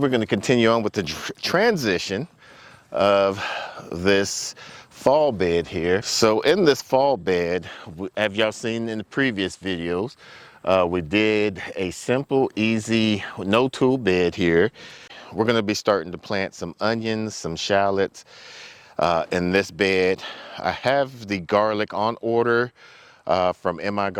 going to continue on with the transition of this fall bed here. So in this fall bed, have y'all seen in the previous videos, we did a simple, easy, no tool bed here. We're going to be starting to plant some onions, some shallots in this bed. I have the garlic on order from MI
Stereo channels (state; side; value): identical; both; correlation 1.00